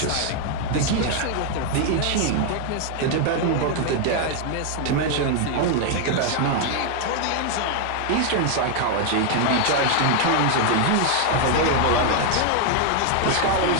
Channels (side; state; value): both; different; correlation 0.00